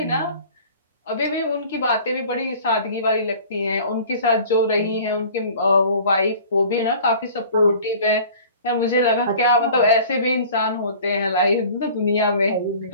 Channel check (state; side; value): inverted; both; correlation -0.46